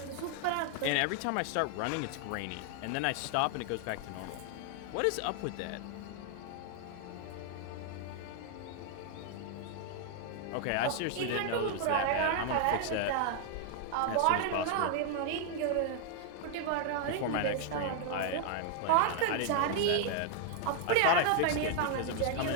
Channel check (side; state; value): both; different; correlation 0.00